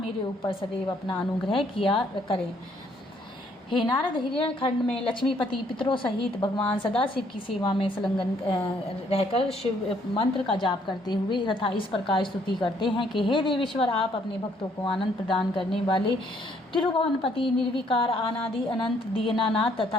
ऊपर सदैव अपना अनुग्रह किया करें। हे नारद, हिरण्य खंड में लक्ष्मीपति पितरों सहित भगवान सदाशिव की सेवा में संलग्न रहकर शिव मंत्र का जाप करते हुए तथा इस प्रकार स्तुति करते हैं कि हे देवेश्वर, आप अपने भक्तों को आनंद प्रदान करने वाले तिरुभुवनपति, निर्विकार, अनादि अनंत, दीनानाथ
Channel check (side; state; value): both; normal; correlation 0.66